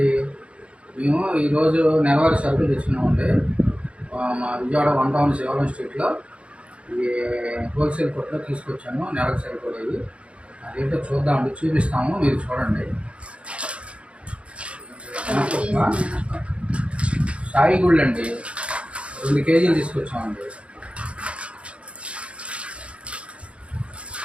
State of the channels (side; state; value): left; late; 0.061 ms